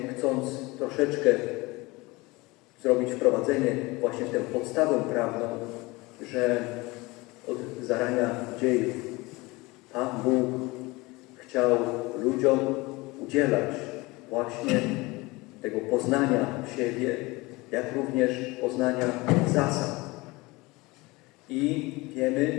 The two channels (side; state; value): right; quieter; 23.0 dB